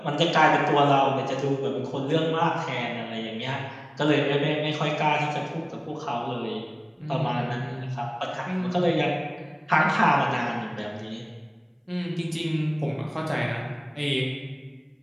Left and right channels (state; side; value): identical; both; correlation 1.00